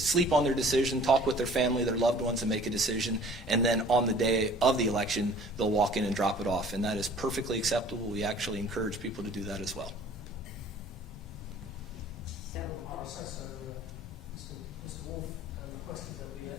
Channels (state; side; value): normal; both; correlation 0.50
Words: on their decision, talk with their family, their loved ones, and make a decision. And then on the day of the election, they'll walk in and drop it off. And that is perfectly acceptable. We actually encourage people to do that as well. So, Mr. Wolf requested that we